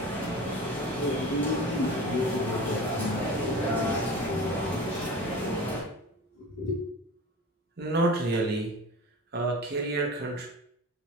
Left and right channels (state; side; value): normal; both; correlation 0.36